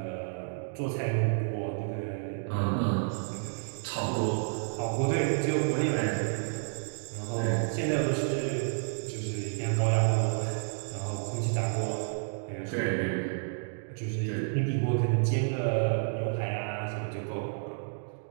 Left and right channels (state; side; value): silent; left; digital silence